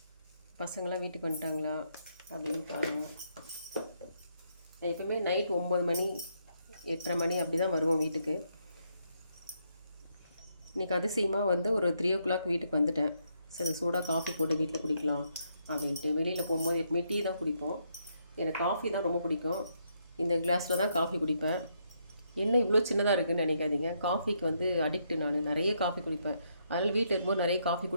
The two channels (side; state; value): both; inverted; correlation -0.76